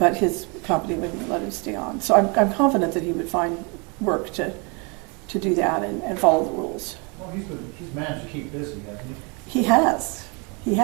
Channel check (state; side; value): quieter; left; 32.0 dB